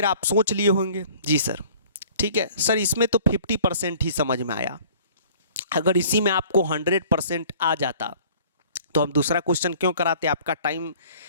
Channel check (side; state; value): both; inverted; correlation -0.51